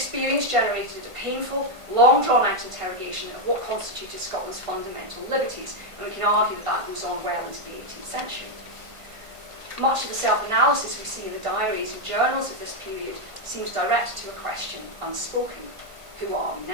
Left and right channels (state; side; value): late; left; 1.5 ms